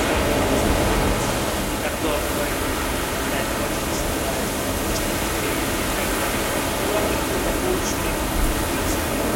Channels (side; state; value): both; identical; correlation 1.00